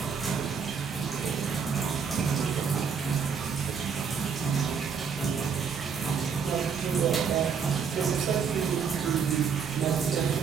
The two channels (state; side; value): quieter; left; 6.4 dB